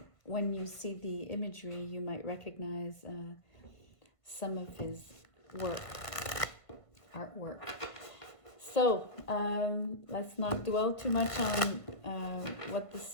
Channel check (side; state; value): right; late; 1.5 ms